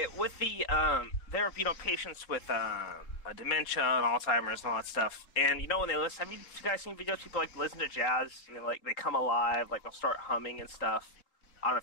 with the there are patients with dementia and Alzheimer's and all that stuff, and when they listen, have you guys seen videos of people like listen to jazz and they come alive, like they'll start humming and stuff. I don't know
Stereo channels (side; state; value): right; late; 3.7 ms